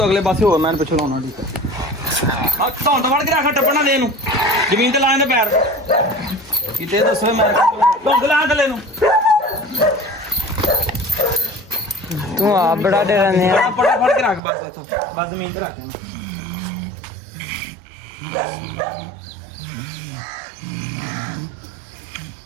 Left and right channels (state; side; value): drops out; left; at 14.4 s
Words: ਅਗਲੇ ਪਾਸੇ ਹੋਰ ਮੈਂ ਪਿੱਛੋਂ ਲਾਉਣਾ ਠੀਕ ਹੈ ਆ ਧੌਣ ਤੋਂ ਵੜ ਕੇ ਰੱਖ ਟੱਪਣਾ ਦੇ ਇਹਨੂੰ ਜ਼ਮੀਨ ਤੇ ਲਾ ਇਹਦੇ ਪੈਰ ਕਿਤੇ ਦੱਸੋ ਮੈਂ ਧੌਣ ਲਾ ਥੱਲੇ ਨੂੰ ਤੂੰ ਆਪ ਬੜਾ ਦੇ ਰਹਿੰਦੇ ਆ ਪੜਾ ਫੜ ਕੇ ਰੱਖ ਬਸ ਇੱਥੋਂ ਬਸ ਜ਼ਮੀਨ ਤੇ ਰੱਖ ਇਹਨੂੰ